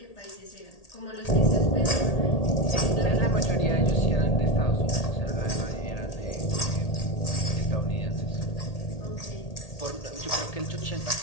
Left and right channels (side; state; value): right; late; 1.8 ms